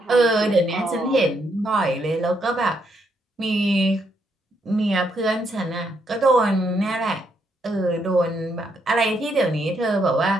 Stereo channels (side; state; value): both; normal; correlation 0.76